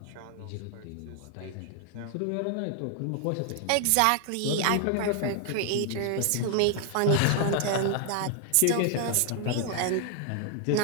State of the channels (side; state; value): both; different; correlation 0.00